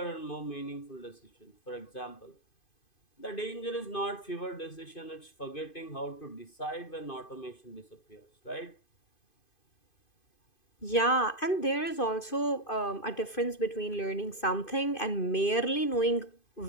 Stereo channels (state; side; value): late; right; 2.5 ms